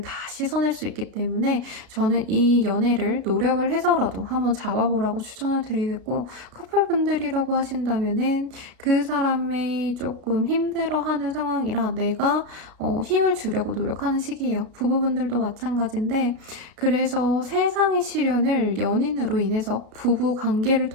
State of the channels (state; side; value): late; left; 33 ms